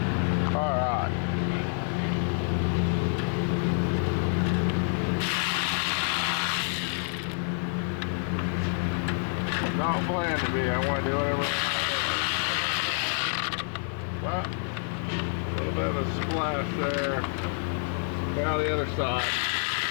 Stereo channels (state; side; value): silent; right; 57 dB below the other